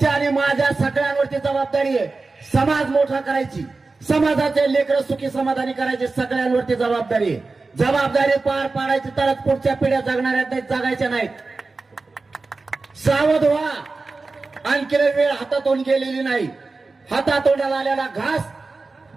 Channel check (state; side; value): quieter; left; 3.8 dB